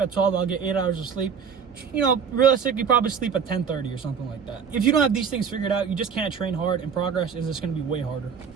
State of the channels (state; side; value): quieter; left; 6.7 dB